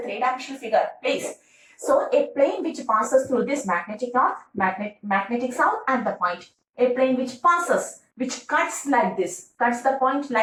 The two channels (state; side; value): identical; both; correlation 1.00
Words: figure. Please. So a plane which passes through this magnetic north, magnetic south and the point. A plane which passes, which cuts like this, cuts the point